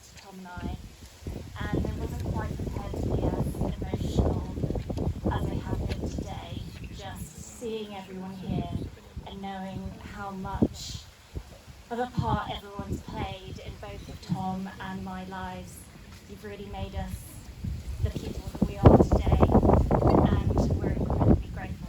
Tom and I, and I wasn't quite prepared to be as emotional as I have been today, just seeing everyone here and knowing how much of a part everyone's played in both of Tom and my lives. You've really made us the people that we are today, and we're incredibly grateful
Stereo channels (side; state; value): both; identical; correlation 1.00